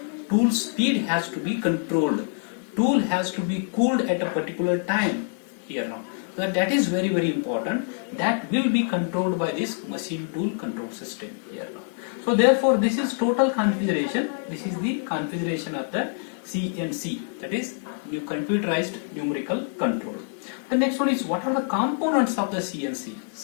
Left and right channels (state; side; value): silent; right; 61 dB below the other